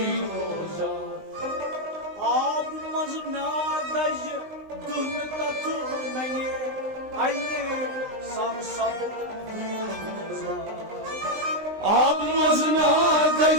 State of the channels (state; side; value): late; left; 19 ms